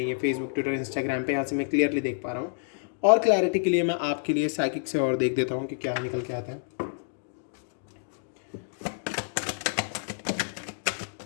ये फेसबुक, ट्विटर, इंस्टाग्राम पे, यहाँ से मैं क्लियरली देख पा रहा हूँ। और क्लैरिटी के लिए मैं आपके लिए साइकिक से और देख देता हूँ कि क्या निकल के आता है।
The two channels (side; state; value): right; silent; digital silence